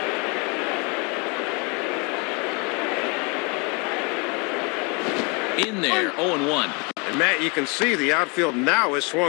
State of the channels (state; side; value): quieter; right; 31.6 dB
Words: In there, 0-1. And Matt, you can see the outfield now is